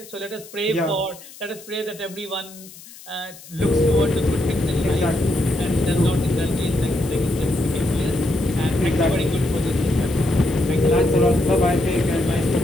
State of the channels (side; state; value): left; noise; hiss, 19 dB below the sound